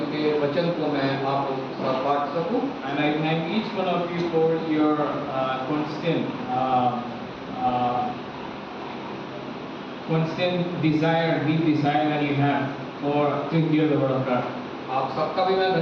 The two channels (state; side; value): identical; both; correlation 1.00